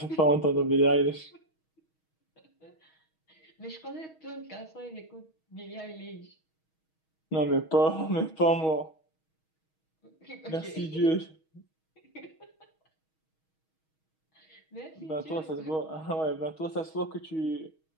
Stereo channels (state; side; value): late; right; 6.3 ms